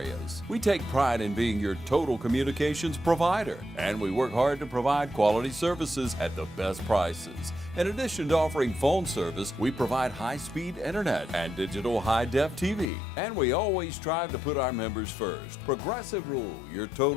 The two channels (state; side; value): drops out; right; at 12.9 s